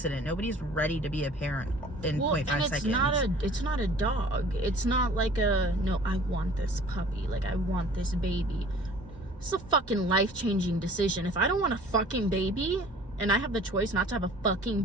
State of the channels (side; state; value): both; normal; correlation 0.48